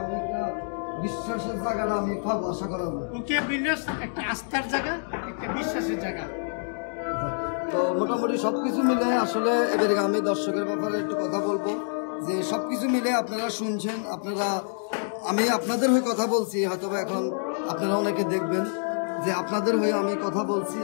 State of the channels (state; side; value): silent; right; digital silence